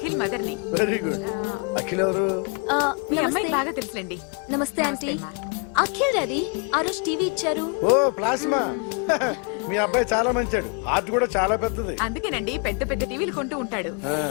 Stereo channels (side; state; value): right; quieter; 36.6 dB